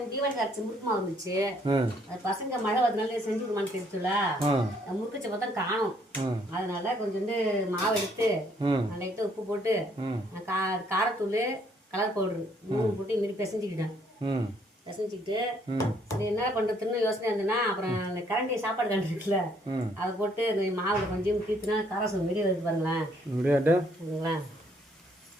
தீபாவளி அரைச்சி முறுக்கு மாவு இருந்துச்சு. அது பசங்க மழை வரதுனால செஞ்சு விடுமான்னு தெரிஞ்சுல முறுக்குச்ச பார்த்தா காணும். அதனால கொஞ்சோண்டு மாவு எடுத்து லைட்டா உப்பு போட்டு காரத்தூள் கலர் பவுடரு 3 போட்டு மீறி பிசைஞ்சுக்கிட்டேன். பிசைஞ்சிக்கிட்டு சரி என்ன பண்றதுன்னு யோசனை இருந்ததுன்னா அப்புறம் அந்த கரண்டி சாப்பாடு கரண்டி இருக்குல்ல அதை போட்டு இந்த மாவுல கொஞ்சம் தீர்த்துனா காரசம் வெளியே வருது பாருங்களேன்.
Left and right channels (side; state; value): both; normal; correlation 0.66